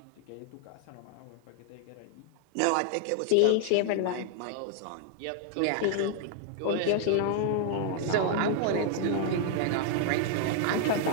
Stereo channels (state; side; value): different; both; correlation -0.01